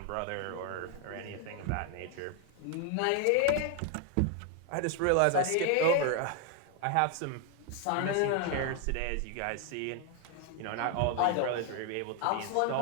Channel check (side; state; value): both; different; correlation 0.01